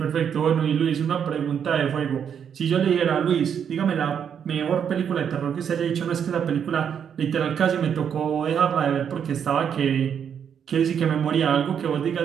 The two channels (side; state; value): left; quieter; 8.0 dB